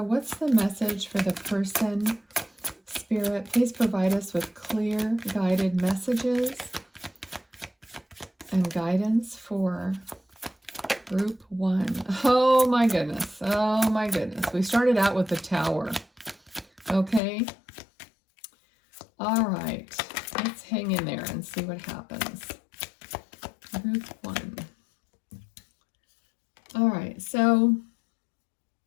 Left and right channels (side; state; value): right; drops out; at 17.2 s